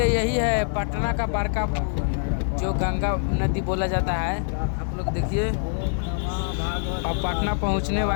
यही है पटना का बड़का पुल जो गंगा नदी बोला जाता है। आप लोग देखिए, अब पटना पहुंचने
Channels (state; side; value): silent; right; 61 dB below the other